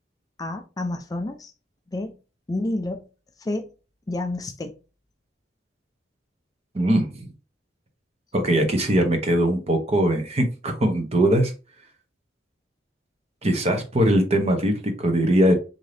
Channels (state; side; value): normal; both; correlation 0.72